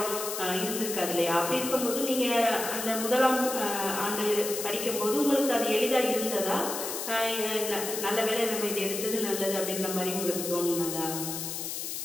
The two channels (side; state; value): left; noise; hiss, 5 dB below the sound